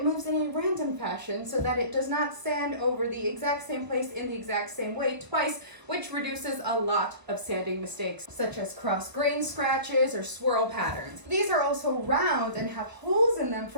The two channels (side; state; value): left; late; 1.0 ms